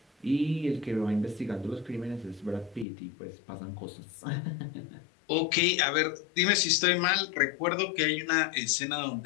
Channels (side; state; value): right; drops out; at 2.9 s